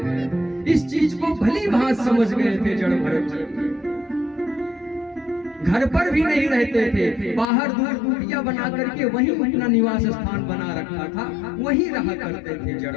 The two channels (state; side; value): drops out; right; at 7.5 s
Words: इस चीज को भली भांति समझ गए थे जड़ भरत जी। घर पर भी नहीं रहते थे, बाहर दूर कुटिया बना करके वहीं अपना निवास स्थान बना रखा था, वहीं रहा करते थे जड़